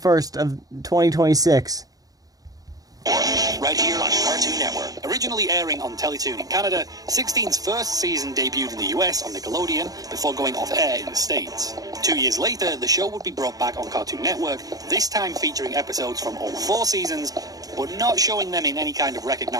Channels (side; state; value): left; late; 0.18 ms